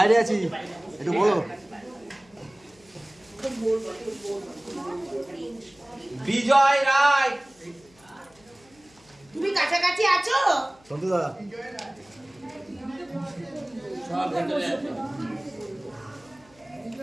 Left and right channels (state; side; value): noise; left; hum, 29 dB below the sound